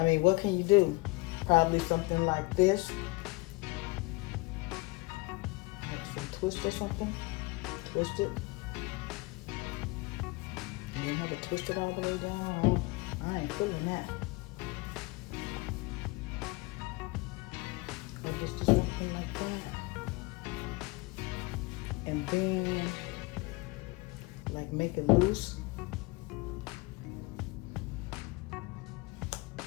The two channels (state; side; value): quieter; right; 23.6 dB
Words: mean, what can you do? Probably something like this. Like some twist or something. Twist it. And then have it twist it all the way down. I ain't feeling that. Or just do something like that. And then, like, make it loose.